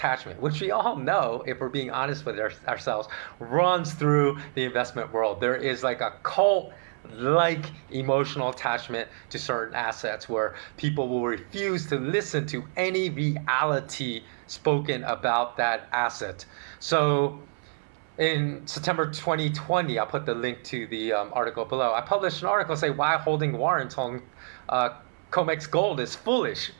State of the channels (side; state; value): left; silent; 60 dB below the other